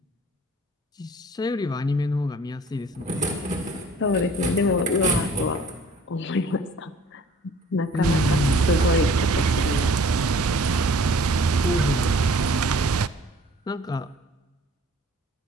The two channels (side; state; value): both; normal; correlation 0.51